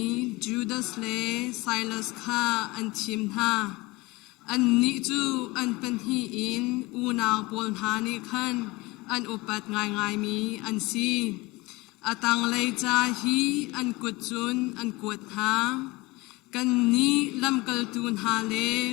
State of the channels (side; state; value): right; quieter; 22.5 dB